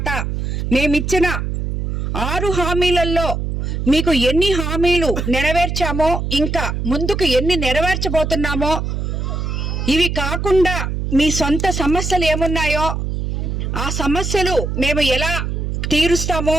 మేమిచ్చిన 6 హామీలలో మీకు ఎన్ని హామీలు నెరవేర్చామో, ఇంకా ముందుకు ఎన్ని నెరవేర్చబోతున్నామో, ఇవి కాకుండా మీ సొంత సమస్యలు ఏమున్నాయో ఆ సమస్యలు మేము ఎలా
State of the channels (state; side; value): noise; right; hum, 2 dB below the sound